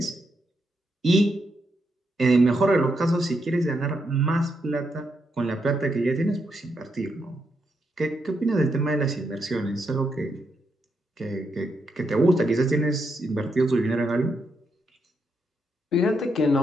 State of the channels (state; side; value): normal; both; correlation 0.81